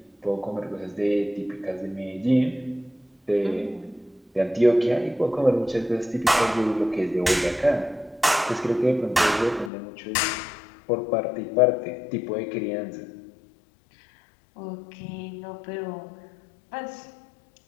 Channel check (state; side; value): drops out; right; at 9.7 s